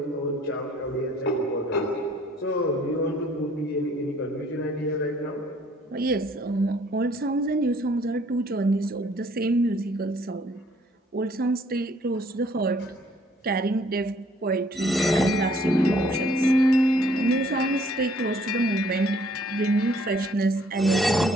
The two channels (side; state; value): both; normal; correlation 0.61